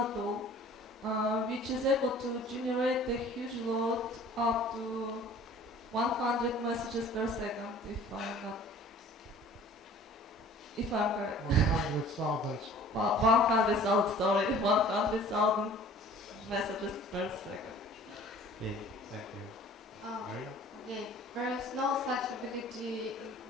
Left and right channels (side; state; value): both; normal; correlation 0.48